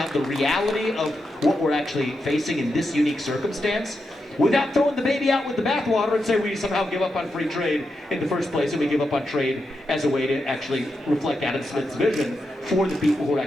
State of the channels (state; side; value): normal; both; correlation 0.86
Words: the reality of what we're actually facing in this unique circumstance, without throwing the baby out with the bathwater and say we somehow give up on free trade in the first place, and we give up on trade as a way to actually reflect Adam Smith's vision for the people who are